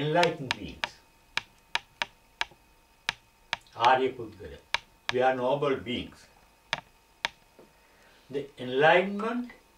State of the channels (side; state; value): both; identical; correlation 1.00